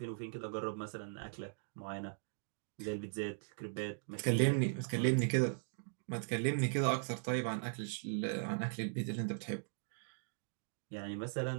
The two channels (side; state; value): left; silent; digital silence